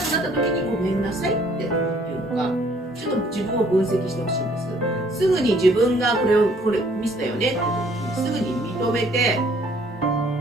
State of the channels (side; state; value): both; normal; correlation 0.61